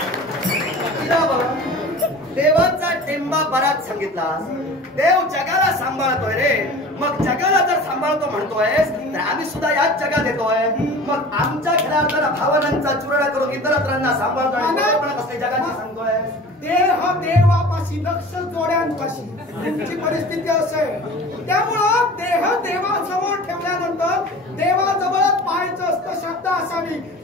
देवाचा टेंबा बराच सांगितला. देव जगाला सांभाळतोय रे. मग जगाला जर सांभाळतो म्हणतोयस तर आम्ही सुद्धा याच जगात येतोय. मग आमच्या खऱ्या भावनांचा चुराडा करून इतरांना सांभाळतोय, जगाची सांगतोय. देह देवापाशी, लक्ष जोड्यांपाशी तुमची परिस्थिती असेल. त्यामुळं देह देवासमोर ठेवल्यानंतर देवाजवळच पाहायचं असतं. श्रद्धा असावी.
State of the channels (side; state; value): both; normal; correlation 0.39